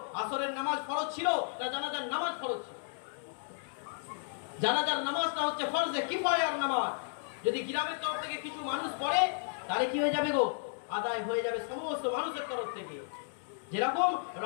আসরের নামাজ ফরজ ছিল না জানাজার নামাজ ফরজ ছিল? জানাজার নামাজটা হচ্ছে ফরজে কিফায়ার নামাজ। যদি গ্রামের তরফ থেকে কিছু মানুষ পড়ে তাহলে কি হয়ে যাবে গো? আদায় হয়ে যাবে সমস্ত মানুষের তরফ থেকে। যেরকম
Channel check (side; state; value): right; silent; digital silence